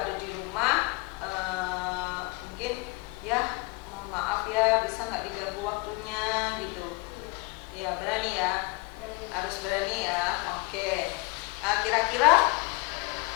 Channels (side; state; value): right; quieter; 26.1 dB